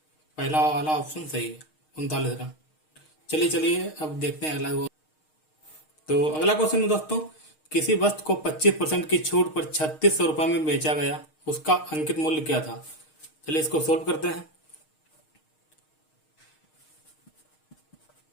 पहला वाला ऑप्शन सही है, 39 रन। चलिए अब देखते हैं अगला। तो अगला क्वेश्चन है दोस्तों, किसी वस्तु को 25% की छूट पर 3600 रुपये में बेचा गया, उसका अंकित मूल्य क्या था? चलिए इसको सोल्व करते हैं।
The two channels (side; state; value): right; late; 6.5 ms